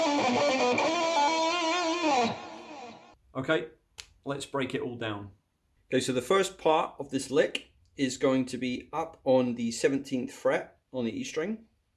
Okay, let's break it all down. Okay, so the first part of this lick is going to be up on the 17th fret on the E string.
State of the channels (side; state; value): both; identical; correlation 1.00